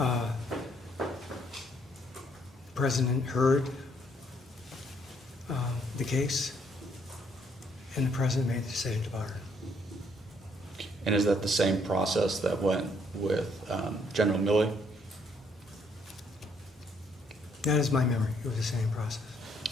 President heard the case, and the President made the decision to pardon. And is that the same process that went with General Milley? That is my memory. It was the same process.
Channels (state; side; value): normal; both; correlation 0.68